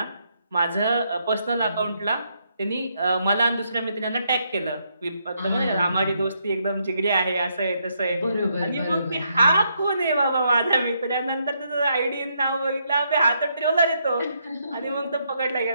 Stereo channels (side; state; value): both; inverted; correlation -0.77